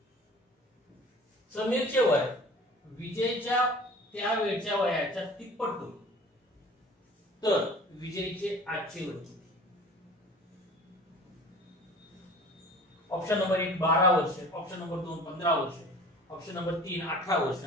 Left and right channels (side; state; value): both; normal; correlation 0.44